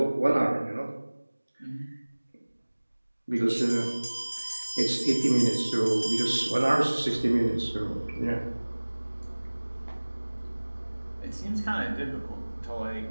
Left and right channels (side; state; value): both; inverted; correlation -1.00